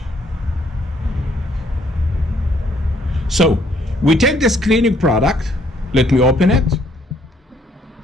So, we take this cleaning product. Let me open it.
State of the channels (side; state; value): both; normal; correlation 0.66